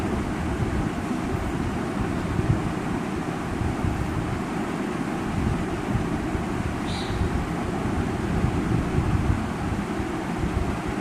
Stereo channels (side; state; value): both; identical; correlation 1.00